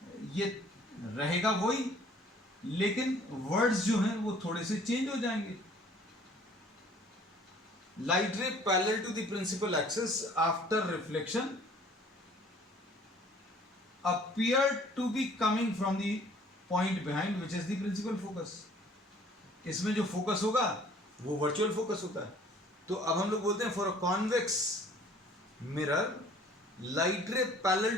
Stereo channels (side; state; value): both; normal; correlation 0.54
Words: ये रहेगा वही, लेकिन वर्ड्स जो हैं वो थोड़े से चेंज हो जाएंगे। Light ray parallel to the principal axis after reflection appear to be coming from the point behind which is the principal focus। इसमें जो फोकस होगा वो वर्चुअल फोकस होता है। तो अब हम लोग बोलते हैं for a convex mirror light ray parallel